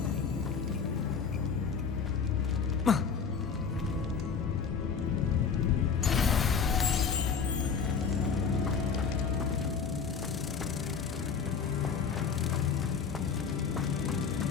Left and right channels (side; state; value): right; quieter; 6.1 dB